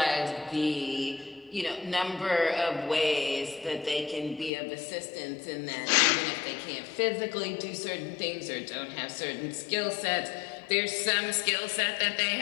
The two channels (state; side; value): drops out; right; at 4.5 s